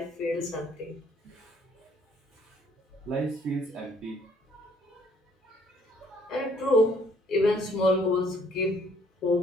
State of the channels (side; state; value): both; normal; correlation 0.62